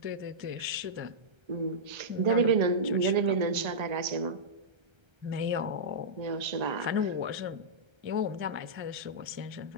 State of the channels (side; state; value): left; late; 1.3 ms